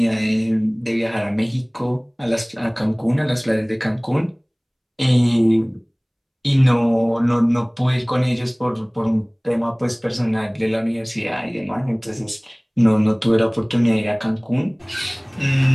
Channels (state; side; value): identical; both; correlation 1.00